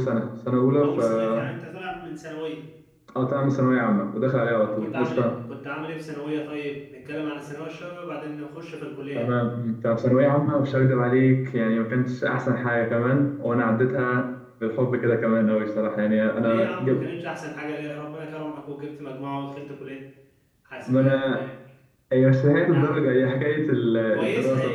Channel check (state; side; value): identical; both; correlation 1.00